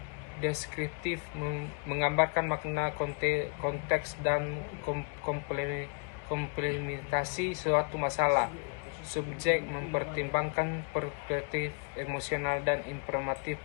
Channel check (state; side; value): quieter; right; 38.3 dB